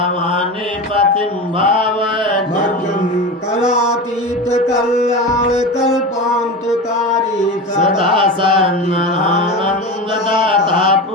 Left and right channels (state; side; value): normal; both; correlation 0.25